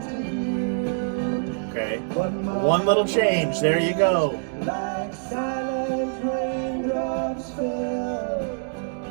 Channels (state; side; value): silent; left; digital silence